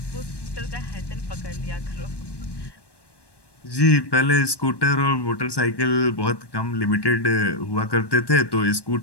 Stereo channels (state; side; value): late; right; 1.1 ms